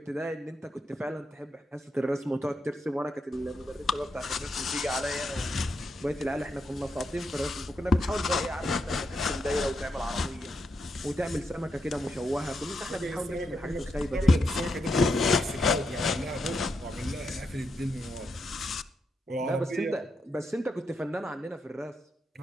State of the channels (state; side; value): normal; both; correlation 0.83